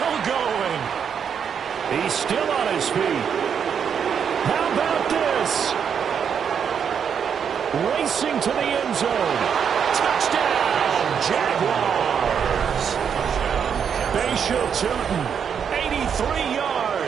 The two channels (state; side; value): quieter; left; 7.4 dB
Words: going. He's still on his feet. How about this? Racing to the end zone. Touchdown, Jaguars. Bashal Tootin, 83